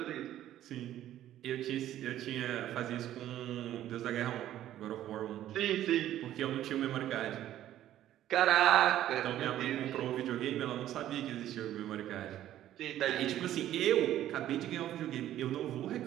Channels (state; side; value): quieter; left; 12.6 dB